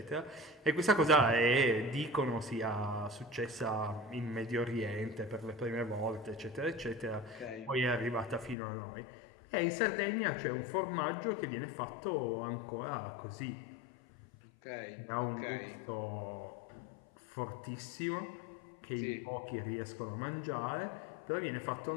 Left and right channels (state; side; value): drops out; right; at 8.6 s